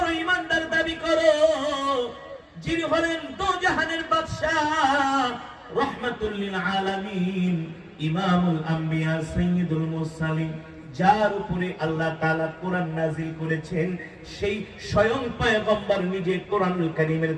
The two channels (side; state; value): both; identical; correlation 1.00